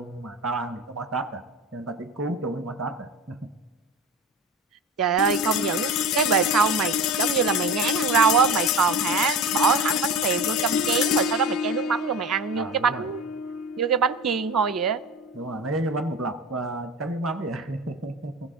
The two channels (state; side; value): normal; both; correlation 0.32